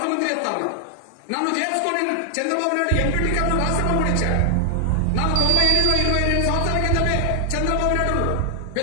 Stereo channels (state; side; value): different; both; correlation 0.00